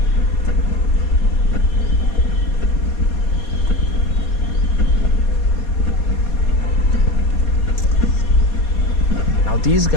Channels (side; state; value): right; late; 4.2 ms